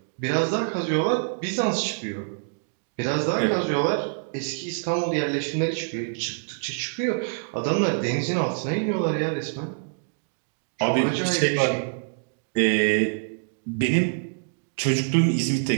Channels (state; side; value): silent; left; digital silence